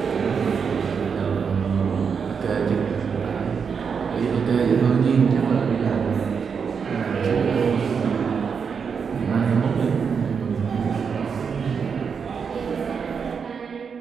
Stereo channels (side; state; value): left; quieter; 6.2 dB